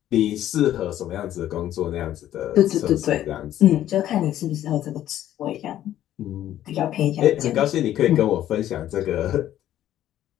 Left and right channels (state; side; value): quieter; right; 12.3 dB